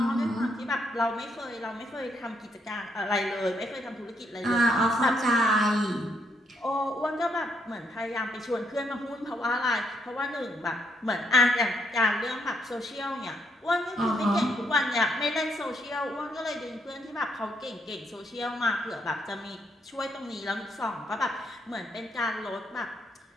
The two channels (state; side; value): normal; both; correlation 0.75